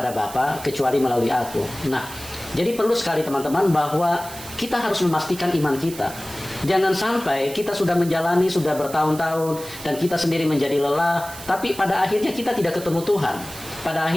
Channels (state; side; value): noise; right; hiss, 14 dB below the sound